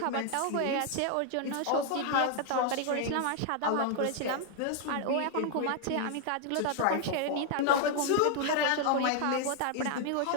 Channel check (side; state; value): both; different; correlation 0.00